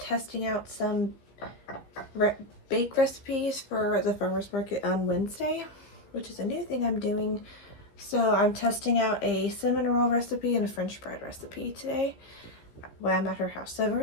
out some bake recipes for the farmer's market on Wednesday, which is a new thing I'm doing. So I'm testing out a cinnamon roll recipe and a French bread recipe today while I'm at her house. So I've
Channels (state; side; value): late; right; 15 ms